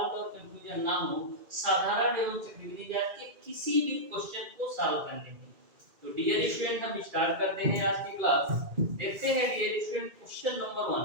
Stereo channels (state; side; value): late; left; 2.2 ms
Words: और कंफ्यूजन ना हो साधारण एवं चक्रवृद्धि ब्याज के किसी भी क्वेश्चन को सॉल्व करने में। तो डियर स्टूडेंट, हम स्टार्ट करते हैं आज की क्लास। देखते हैं डियर स्टूडेंट क्वेश्चन नंबर